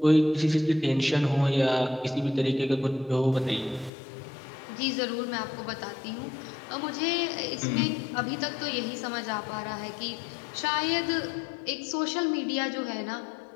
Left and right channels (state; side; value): drops out; right; at 3.9 s